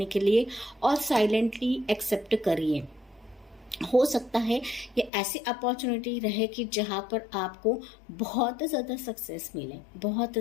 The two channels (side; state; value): right; drops out; at 5.1 s